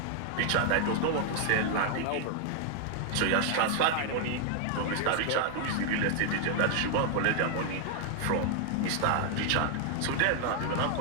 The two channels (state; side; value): different; both; correlation 0.00